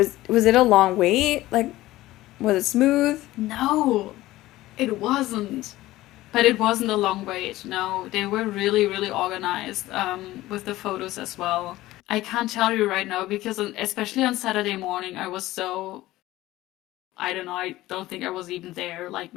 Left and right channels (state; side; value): quieter; right; 16.8 dB